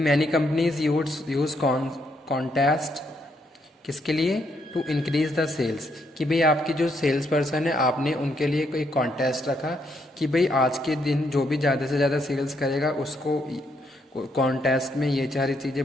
मैनी कंपनीज यूज कॉन्टेस्ट किसके लिए? टू इंक्रीज द सेल्स, कि भाई आपकी जो सेल्स पर्सन है आपने उनके लिए कोई कॉन्टेस्ट रखा कि भाई आज के दिन जो भी ज़्यादा से ज़्यादा सेल्स करेगा उसको कॉन्टेस्ट में ये सारी चीज़ें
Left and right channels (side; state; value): both; normal; correlation 0.75